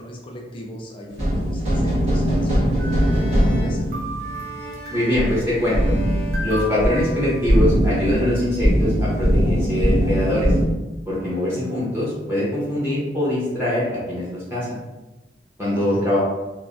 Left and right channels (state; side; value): normal; both; correlation 0.77